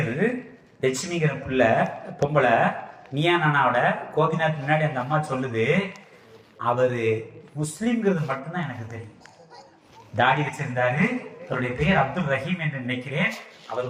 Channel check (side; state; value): both; identical; correlation 1.00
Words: லட்சுமிங்கிற பிள்ளை பொம்பளை நீயா நானாவோட கோபிநாத் முன்னாடி அந்த அம்மா சொல்லுது, அவரு முஸ்லிம்ங்கிறது மட்டும்தான் எனக்கு தெரியும். தாடி வச்சிருந்தாரு, அவருடைய பெயர் அப்துல் ரஹீம் என்று நினைக்கிறேன். அவர்